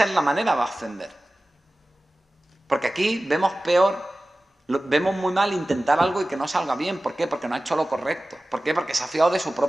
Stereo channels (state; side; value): normal; both; correlation 0.97